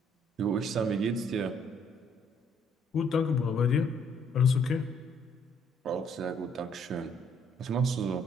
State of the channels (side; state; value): both; normal; correlation 0.66